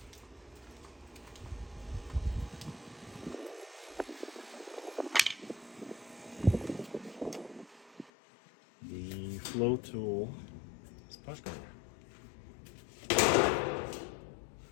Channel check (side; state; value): right; drops out; at 8.1 s